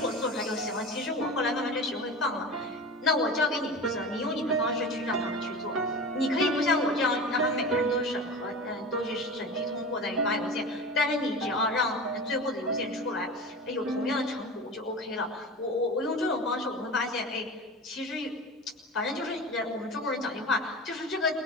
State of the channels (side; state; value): both; normal; correlation 0.31